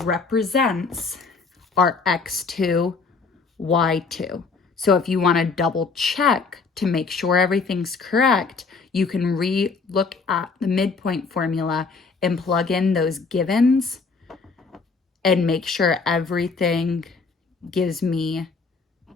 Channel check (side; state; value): right; quieter; 4.6 dB